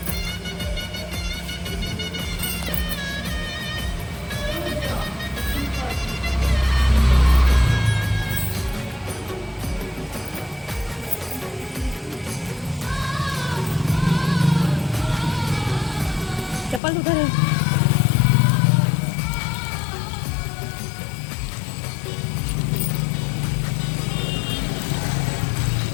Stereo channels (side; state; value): right; drops out; at 16.8 s